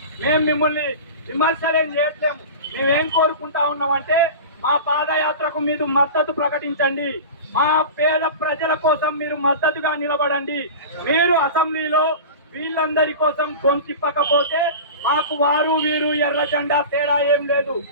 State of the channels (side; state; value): both; inverted; correlation -0.32